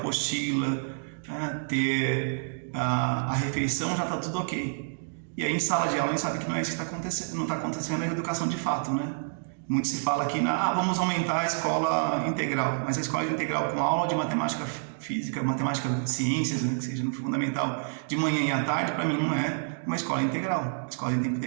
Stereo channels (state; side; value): silent; left; digital silence